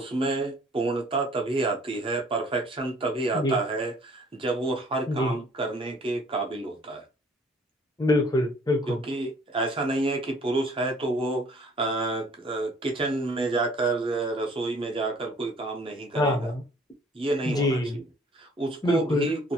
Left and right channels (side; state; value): both; normal; correlation 0.56